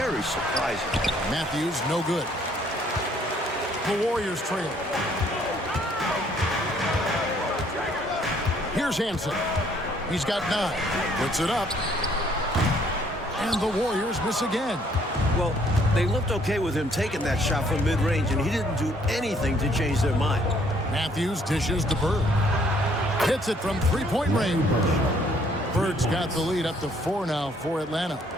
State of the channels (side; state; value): both; normal; correlation 0.64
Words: surprising. Matthews, no good. The Warriors trail. Here's Hansen. He's got 9. Puts it up. And the Warriors miss again. Well, they looked okay with him taking that shot from mid-range, and he didn't do anything to change their mind. Matthews dishes to Bird. Hits it from three-point range. Bird's got the lead up to 4 now for Atlanta.